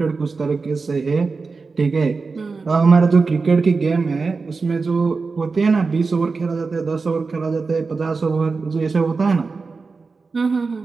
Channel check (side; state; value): left; quieter; 4.4 dB